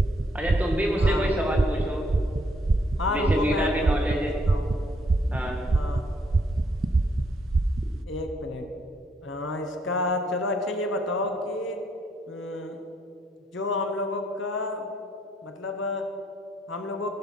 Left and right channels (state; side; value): normal; both; correlation 0.71